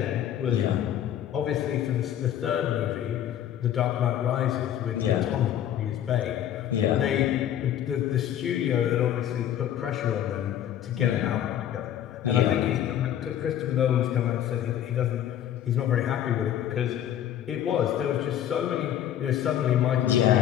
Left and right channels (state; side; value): quieter; right; 10.8 dB